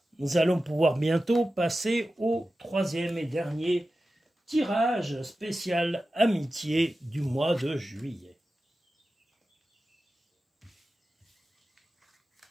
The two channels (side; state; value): both; normal; correlation 0.94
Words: nous allons pouvoir bientôt passer au troisième et dernier tirage spécial amitié du mois de juillet.